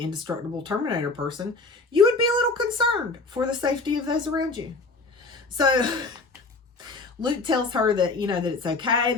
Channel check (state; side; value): quieter; right; 3.6 dB